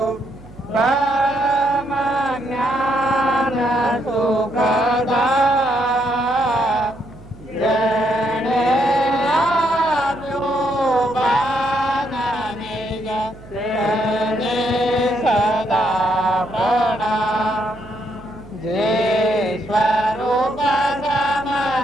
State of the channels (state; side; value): noise; right; hum, 20 dB below the sound